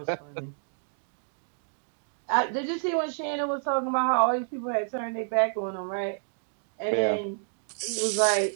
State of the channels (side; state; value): left; silent; digital silence